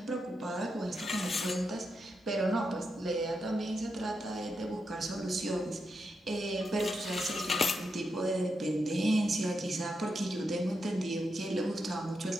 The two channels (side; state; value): both; normal; correlation 0.85